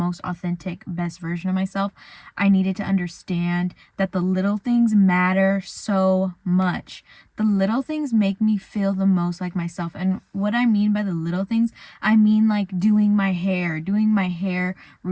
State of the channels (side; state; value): both; identical; correlation 1.00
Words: authentic, best version of myself, I needed to understand that the little things matter so much. The little things make me feel the most like myself. And what I mean by the little things, I mean like doing my hair